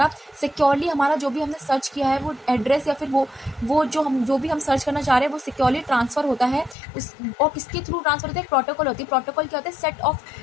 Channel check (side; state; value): right; drops out; at 6.8 s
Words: सिक्योरली हमारा जो भी हमने सर्च किया है वो एड्रेस या फिर वो जो भी हम सर्च करना चाह रहे हैं वो सिक्योरली ट्रांसफर होता है। और किसके थ्रू ट्रांसफर होता है? एक प्रोटोकॉल होती है। प्रोटोकॉल क्या होता है? Set of